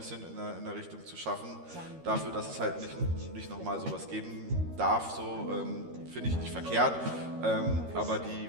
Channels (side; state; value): left; late; 13 ms